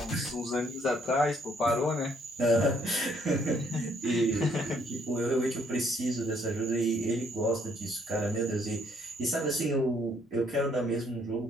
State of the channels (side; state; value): both; normal; correlation 0.67